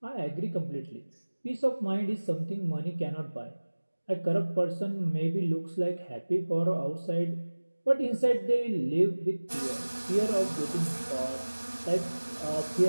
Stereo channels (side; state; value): both; inverted; correlation -1.00